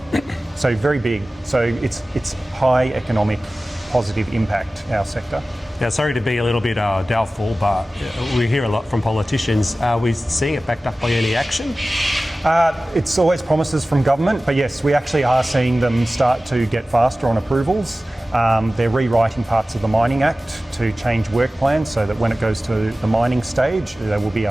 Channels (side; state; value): both; normal; correlation 0.96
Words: So very big. So it's high economic positive impact, our sector. Now, sorry to be a little bit doubtful, but we hear a lot from politicians. Are we seeing it backed up by any action? It's always promises from government, but yes, we actually are seeing them start to get faster on approvals. They're rewriting parts of the Mining Act to change work plans so that when it goes to the mining stage, there will be a